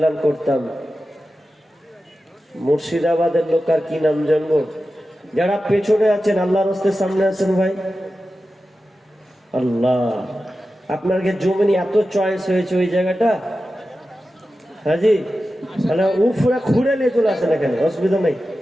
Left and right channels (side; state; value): both; normal; correlation 0.93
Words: করতাম। মুর্শিদাবাদের লোক আর কি নাম জানবো? যারা পেছনে আছেন আল্লাহর রাস্তার সামনে আছেন ভাই, আল্লাহ আপনার জমিনে এত চয়েস হয়েছে ওই জায়গাটা, হাজি তাহলে পুরা ঘুরে নিয়ে চলে আসেন এখানে, অসুবিধা নাই।